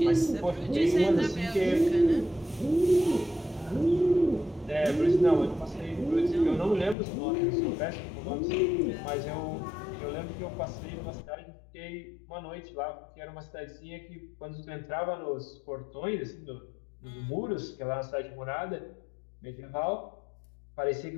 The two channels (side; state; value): right; drops out; at 7.0 s